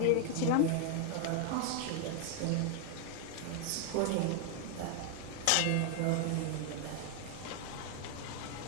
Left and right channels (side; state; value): both; different; correlation 0.00